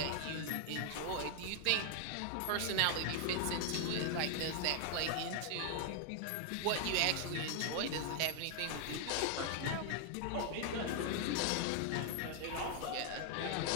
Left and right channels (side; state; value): both; different; correlation 0.00